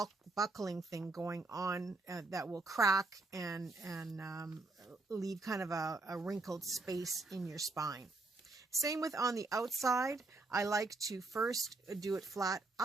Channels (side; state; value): left; quieter; 3.3 dB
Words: thing going on that will crack and leave kind of a wrinkled space in your spine. Same with on the outside. I like to first do it flat